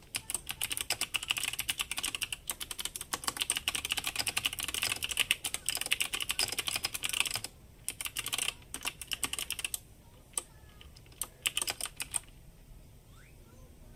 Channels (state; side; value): identical; both; correlation 1.00